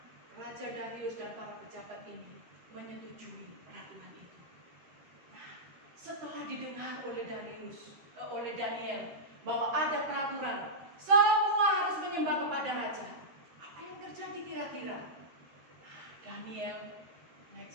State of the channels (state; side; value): late; left; 13 ms